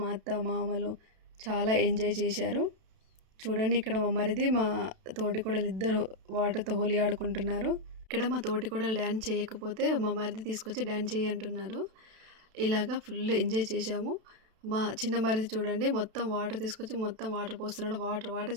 అత్త మామలు చాలా ఎంజాయ్ చేశారు. చూడండి ఇక్కడ మా మరిది మా తోటికోడలు ఇద్దరు వాటర్తో హోలీ ఆడుకుంటున్నారు. ఇక్కడ మా తోటికోడలు డ్యాన్స్ చేయకపోతే మా మరిది తీసుకొచ్చి డ్యాన్స్ చేయి అంటున్నారు. ఇలాగా ఫుల్ ఎంజాయ్ చేశాము. మా చిన్న మరిది చూడండి మొత్తం వాటర్ తీసుకొచ్చి మొత్తం వాటర్ పోస్తున్నాడు. వాటర్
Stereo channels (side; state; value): left; late; 32 ms